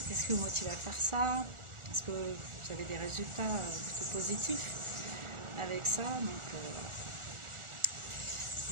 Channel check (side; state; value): left; late; 1.4 ms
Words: qu'est-ce qui vous motive à faire ça. Est-ce que vous avez des résultats plutôt positifs avec ça? Donc